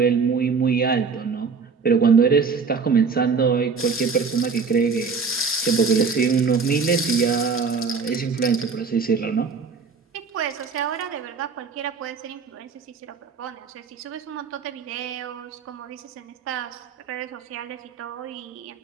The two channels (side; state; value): left; quieter; 5.2 dB